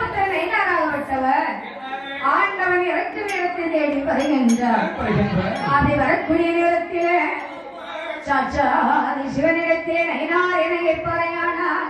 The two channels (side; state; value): both; identical; correlation 1.00